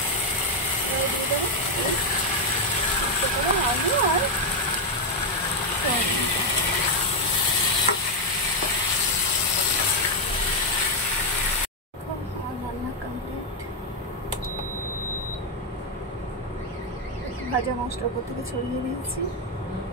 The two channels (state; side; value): normal; both; correlation 0.03